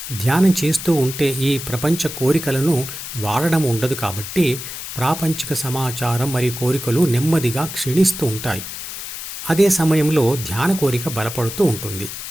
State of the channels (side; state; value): left; noise; hiss, 8 dB below the sound